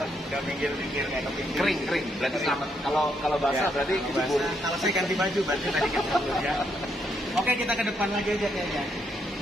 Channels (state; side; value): normal; both; correlation 0.76